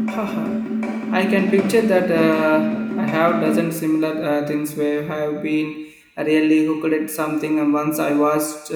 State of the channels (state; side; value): identical; both; correlation 1.00